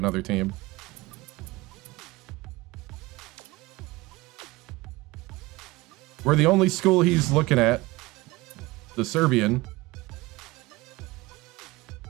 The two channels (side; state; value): left; quieter; 21.1 dB